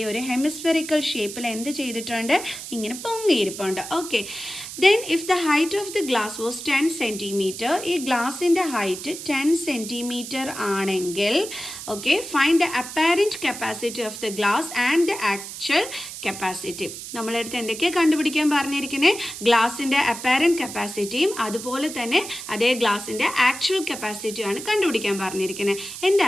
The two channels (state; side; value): noise; right; hiss, 10 dB below the sound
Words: ഒരു ഹെമിസ്ഫെറിക്കൽ ഷേപ്പിൽ എന്ത് ചെയ്തിട്ടുണ്ട്, ഇങ്ങനെ പൊങ്ങിയിരിപ്പുണ്ട്. Okay, then if the height of the glass was 10 centimetre, ഈ ഗ്ലാസിൻ്റെ ഹൈറ്റ് 10 സെൻറ്റിമീറ്റർ ആണെങ്കിൽ okay, find the apparent capacity of the glass and the actual capacity. നമ്മളടുത്ത് എന്തൊക്കെയാണ് കണ്ടുപിടിക്കാൻ പറഞ്ഞിരിക്കുന്നത്, ഗ്ലാസിൻ്റെ അപ്പാരൻറ്റ് കപ്പാസിറ്റിയും അതുപോലെ തന്നെ അതേ ഗ്ലാസിൻ്റെ ആക്ച്വൽ കപ്പാസിറ്റിയാണ് കണ്ടുപിടിക്കാൻ പറഞ്ഞിരിക്കുന്നത്. എന്താ